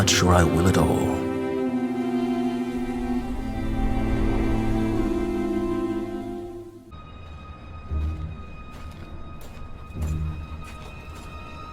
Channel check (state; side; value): identical; both; correlation 1.00